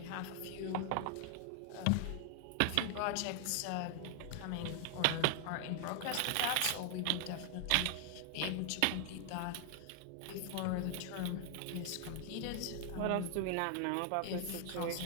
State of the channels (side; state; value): both; different; correlation 0.00